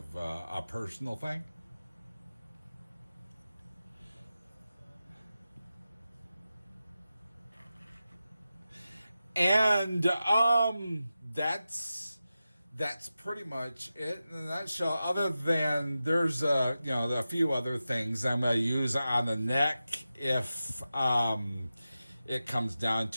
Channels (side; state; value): both; inverted; correlation -0.92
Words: a personal thing. And that's pretty much it in a nutshell. Other than there's a few other things I'm gonna use on the neck if it comes down